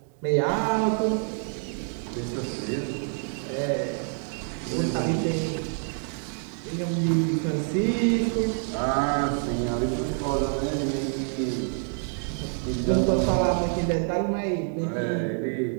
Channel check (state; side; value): silent; left; 57 dB below the other